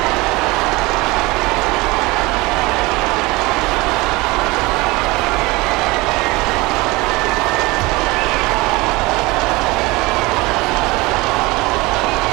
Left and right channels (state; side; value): quieter; left; 22.7 dB